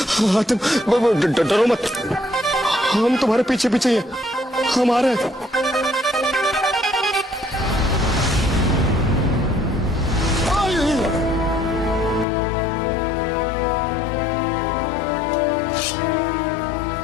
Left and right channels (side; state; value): right; drops out; at 12.2 s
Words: हातिम, डरो मत, हम तुम्हारे पीछे पीछे ही हैं। हम आ रहे हैं।